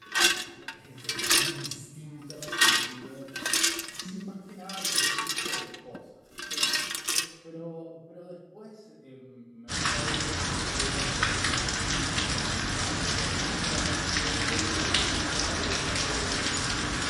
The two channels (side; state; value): both; identical; correlation 1.00